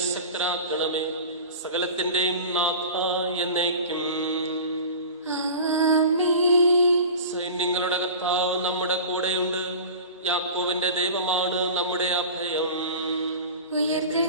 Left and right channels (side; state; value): both; inverted; correlation -0.35